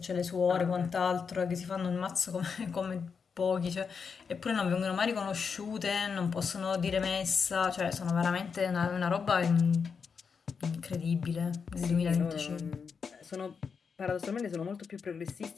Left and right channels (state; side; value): quieter; right; 5.9 dB